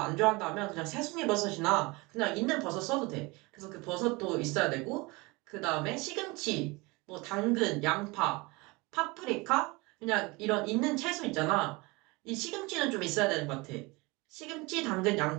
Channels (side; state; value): left; quieter; 24.8 dB